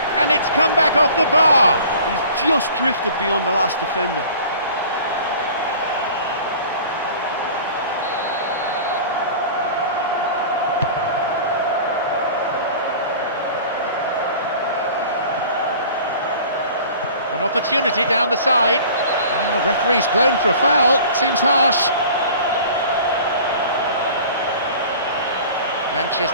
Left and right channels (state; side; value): inverted; both; correlation -0.44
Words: and it's come back off the bar. He's just drifted beyond the last defender. An opportunity down the side. And the referee's blown for a foul. Seems harsh.